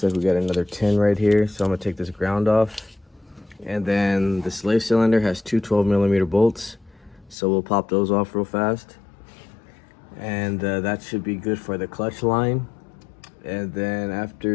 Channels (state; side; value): drops out; right; at 7.4 s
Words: like we got another 10 right here, so I'm gonna take this ground off. And then the slave cylinder has two 12mm bolts, so we'll pop those off real fast. And that should be good for the clutch line. And then